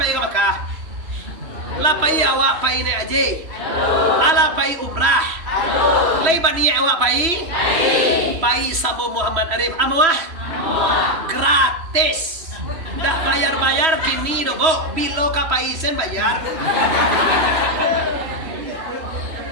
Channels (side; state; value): left; late; 3.0 ms